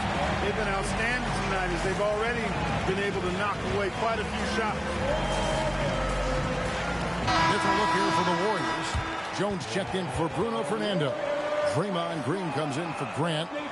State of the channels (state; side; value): identical; both; correlation 1.00